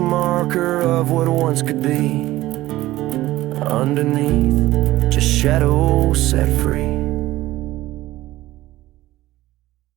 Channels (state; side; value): quieter; left; 16.6 dB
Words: marker of what once could be. Underneath, just shadows set free.